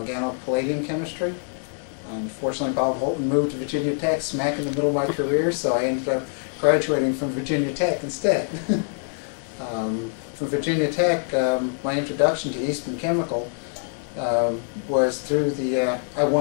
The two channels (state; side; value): silent; right; 62 dB below the other